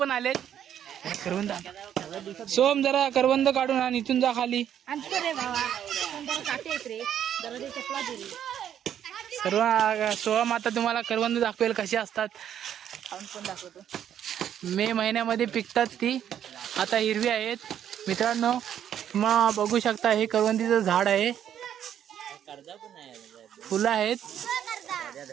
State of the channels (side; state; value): left; quieter; 9.8 dB